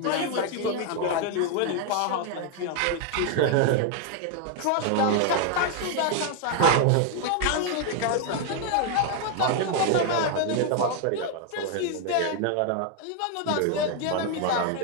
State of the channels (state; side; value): different; both; correlation 0.01